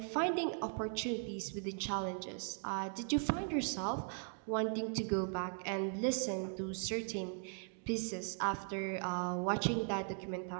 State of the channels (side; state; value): left; silent; 52 dB below the other